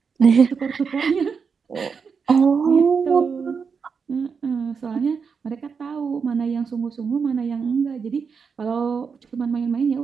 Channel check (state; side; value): quieter; left; 5.8 dB